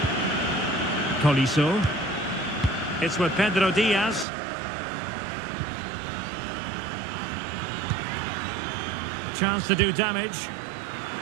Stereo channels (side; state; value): left; drops out; at 4.2 s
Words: Colisso. It's with Pedro Diaz. Chance to do damage.